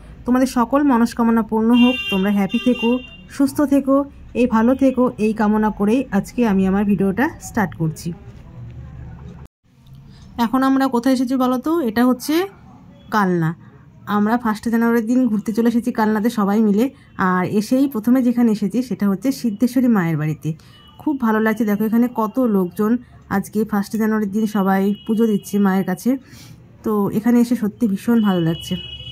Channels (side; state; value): both; identical; correlation 1.00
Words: তোমাদের সকল মনস্কামনা পূর্ণ হোক, তোমরা হ্যাপি থেকো, সুস্থ থেকো, এই ভালো থেকো, এই কামনা করেই আজকে আমি আমার ভিডিওটা স্টার্ট করছি। এখন আমরা কোথায় এসেছি বলো তো? এটা হচ্ছে কালনা। আমরা 1 জানুয়ারির দিন ঘুরতে চলে এসেছি কালনাতে সবাই মিলে। আর এসেই প্রথমে যেখানে এসেছি সেটা হচ্ছে সিদ্ধেশ্বরী মায়ের বাড়িতে। খুব ভালো লাগছে, দেখো এখানে কত লোকজন আজকে 1 জানুয়ারির দিন সবাই পুজো দিচ্ছে মায়ের কাছে। তো এখানে এসে সত্যি ভীষণ ভালো লাগছে।